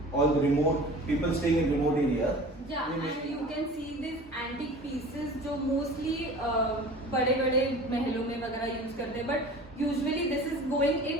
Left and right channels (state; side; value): normal; both; correlation 0.41